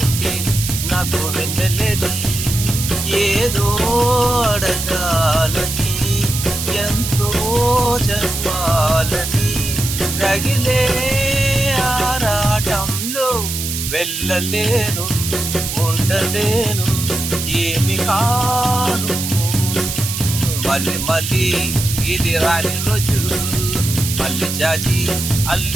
నాకు వెన్నెలేది. ఏదో అడగాలని, ఎంతో చెప్పాలని, రగిలే ఆరాటంలో వెళ్ళలేను, ఉండలేను, ఏమి కాను. మళ్ళీ మళ్ళీ ఇది రాని రోజు, మళ్ళీ జాజి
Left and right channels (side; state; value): right; noise; hiss, 4 dB below the sound